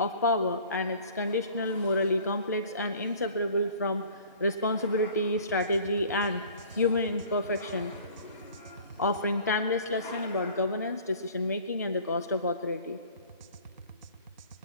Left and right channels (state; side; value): inverted; both; correlation -0.48